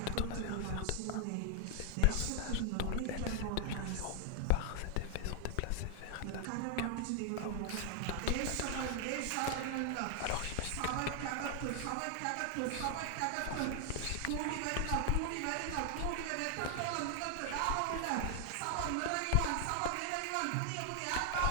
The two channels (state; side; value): different; both; correlation 0.00